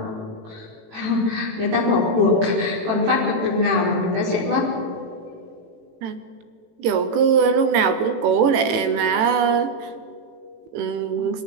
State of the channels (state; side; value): late; left; 18 ms